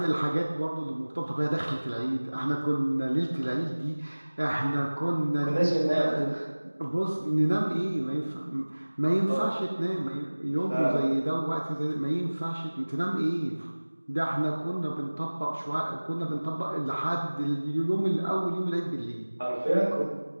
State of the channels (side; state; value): both; inverted; correlation -1.00